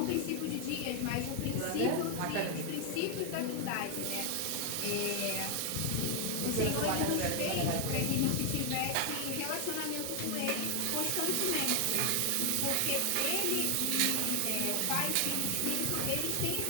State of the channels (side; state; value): both; different; correlation 0.00